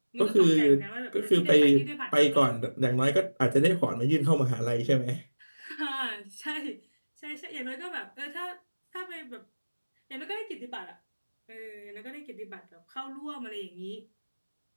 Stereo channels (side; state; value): both; inverted; correlation -1.00